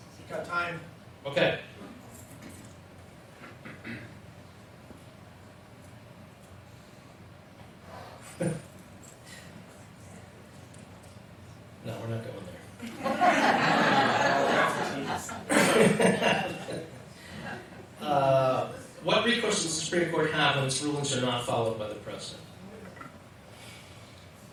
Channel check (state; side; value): identical; both; correlation 1.00